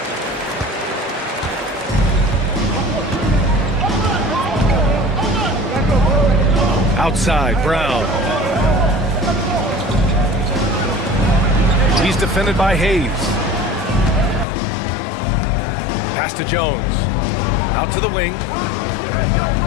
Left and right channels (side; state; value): right; drops out; at 14.5 s